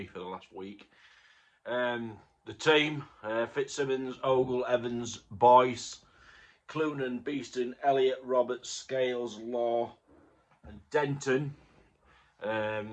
for the last week. The team: Fitzsimmons, Ogle, Evans, Boyce, Clunan, Beeston, Elliott, Roberts, Scales, Law, and Denton.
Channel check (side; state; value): both; identical; correlation 1.00